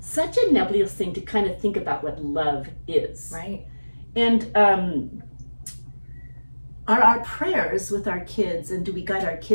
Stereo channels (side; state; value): both; inverted; correlation -1.00